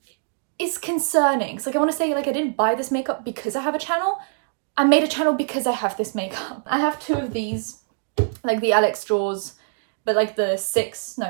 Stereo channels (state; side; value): silent; left; digital silence